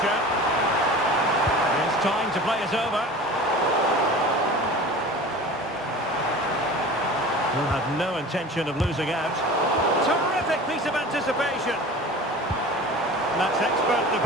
It's time to play it over. He'll have no intention of losing out. Terrific piece of anticipation. That's expert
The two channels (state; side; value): normal; both; correlation 0.38